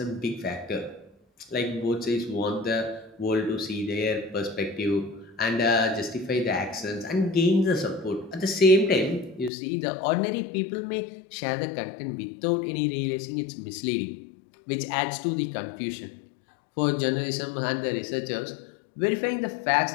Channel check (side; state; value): right; drops out; at 9.5 s